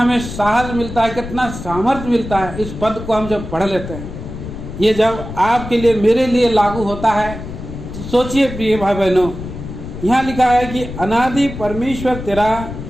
साहस मिलता है, कितना सामर्थ्य मिलता है। इस पद को हम जब पढ़ लेते हैं, ये जब आपके लिए मेरे लिए लागू होता है तो सोचिए प्रिय भाई बहनों, यहाँ लिखा है कि अनादि परमेश्वर तेरा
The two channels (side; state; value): left; noise; rumble, 10 dB below the sound